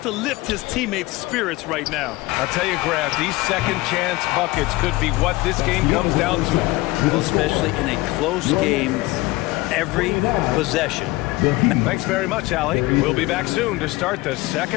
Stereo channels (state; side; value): quieter; right; 20.4 dB